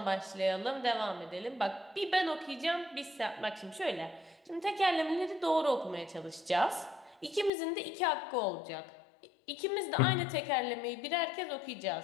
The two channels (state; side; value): drops out; right; at 7.5 s